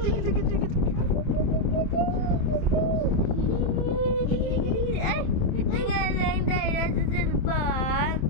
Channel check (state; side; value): late; right; 27 ms